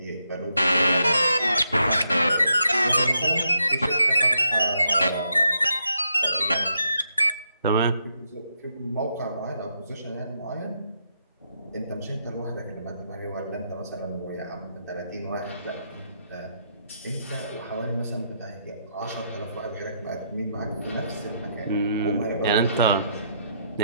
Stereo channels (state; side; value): inverted; both; correlation -0.78